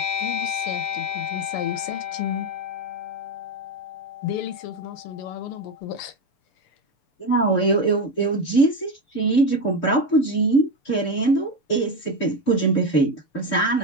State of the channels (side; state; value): right; late; 6.8 ms